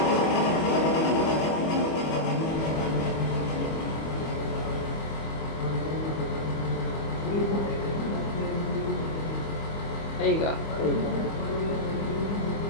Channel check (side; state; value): right; late; 25 ms